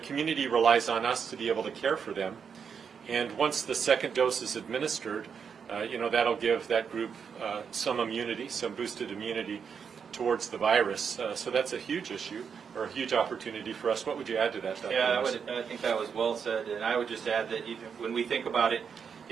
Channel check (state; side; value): quieter; left; 6.6 dB